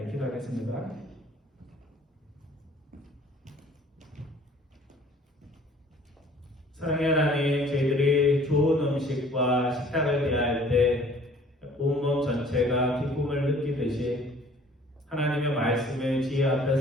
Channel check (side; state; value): both; normal; correlation 0.54